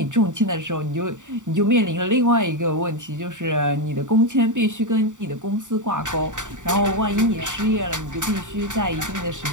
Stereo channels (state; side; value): late; left; 0.86 ms